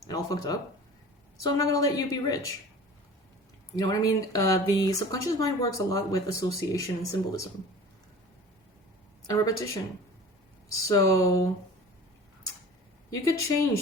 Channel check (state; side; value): normal; both; correlation 0.40